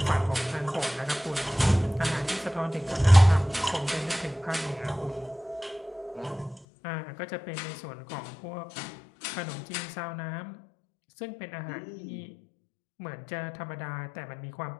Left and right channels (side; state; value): right; drops out; at 6.7 s